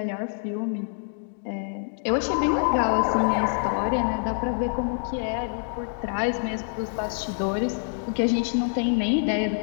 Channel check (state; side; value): silent; right; digital silence